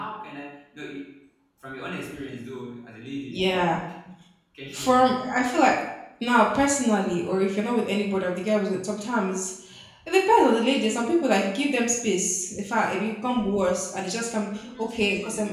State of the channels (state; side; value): identical; both; correlation 1.00